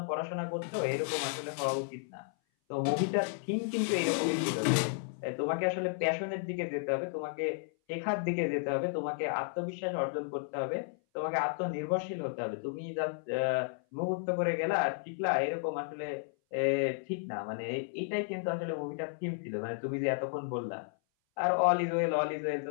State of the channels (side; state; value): right; silent; 56 dB below the other